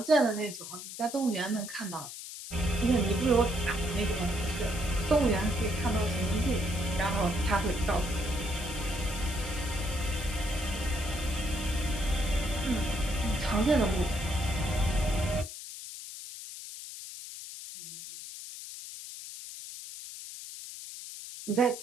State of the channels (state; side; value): noise; left; hiss, 11 dB below the sound